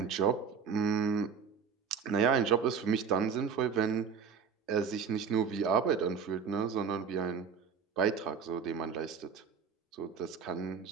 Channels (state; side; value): quieter; left; 6.5 dB